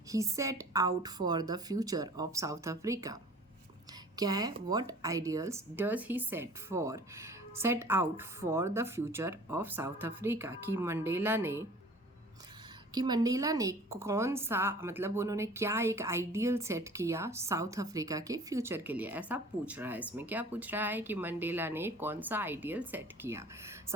he set out for the future of South Africa. क्या है? What ideals does he set out for the future of South Africa, कि मंडेला ने कौन सा, मतलब उन्होंने क्या एक आइडियल सेट किया साउथ अफ्रीका के फ्यूचर के लिए, ऐसा पूछ रहा है। इसमें क्या पूछ रहा है कि मंडेला ने कौन सा आइडियल सेट किया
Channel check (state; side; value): normal; both; correlation 0.46